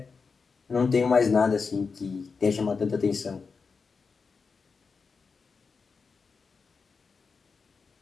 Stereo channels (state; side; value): quieter; right; 5.0 dB